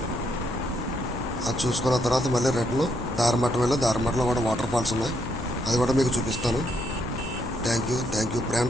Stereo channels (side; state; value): both; normal; correlation 0.75